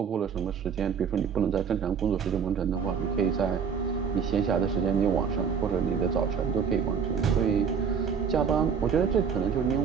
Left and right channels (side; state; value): left; quieter; 6.7 dB